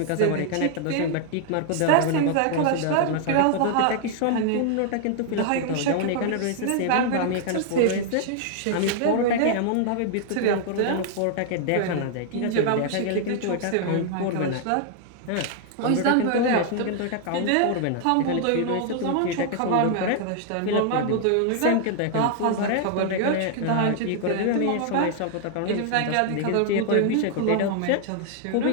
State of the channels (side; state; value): both; different; correlation 0.00